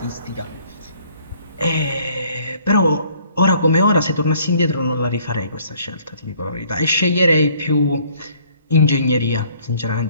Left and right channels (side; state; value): both; inverted; correlation -0.60